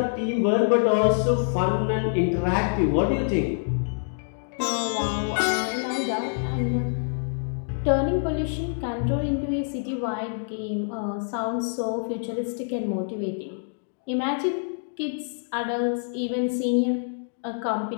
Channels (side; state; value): right; silent; digital silence